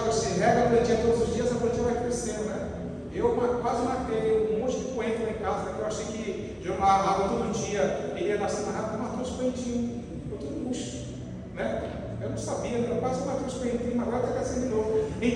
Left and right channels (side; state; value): both; identical; correlation 1.00